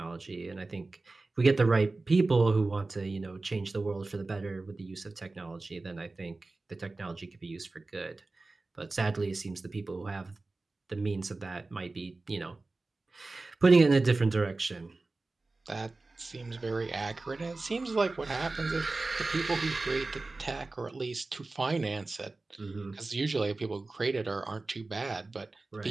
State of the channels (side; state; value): left; quieter; 3.4 dB